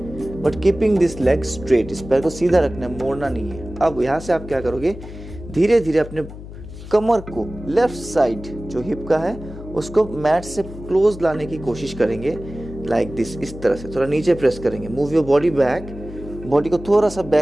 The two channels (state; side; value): noise; left; hum, 13 dB below the sound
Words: but keeping this leg straight. इस पैर को सीधा रखना है, मोड़ना नहीं है. अब यहाँ से आप क्या करोगे, धीरे धीरे अपने कमर को लेफ्ट साइड जो हिप का है उसको मैट से क्लोज लाने की कोशिश करेंगे. Like this. इस तरह से थोड़ा नीचे प्रेस करेंगे. Move your body back. Body को थोड़ा सा